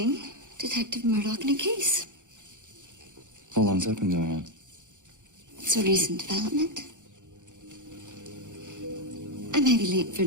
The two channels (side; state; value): left; late; 0.86 ms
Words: Detective Murdoch in a case. How long's that been going on? It's a recent development. I may be late for